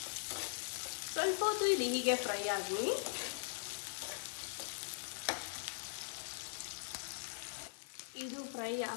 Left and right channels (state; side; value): silent; right; 50 dB below the other